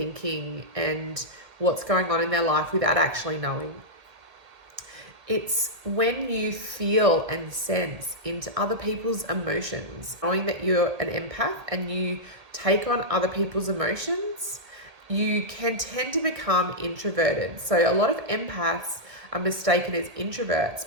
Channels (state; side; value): late; left; 1.8 ms